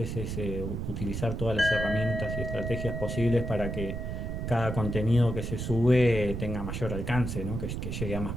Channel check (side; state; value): right; noise; rumble, 4 dB below the sound